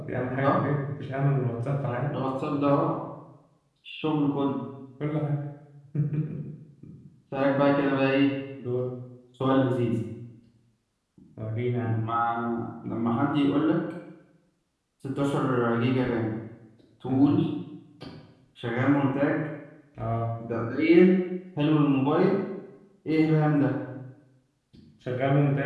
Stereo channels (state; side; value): identical; both; correlation 1.00